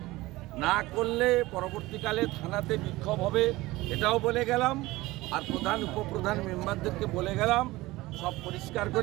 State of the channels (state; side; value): quieter; left; 19.3 dB